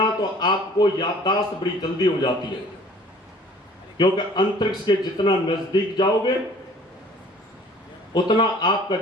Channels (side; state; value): both; normal; correlation 0.52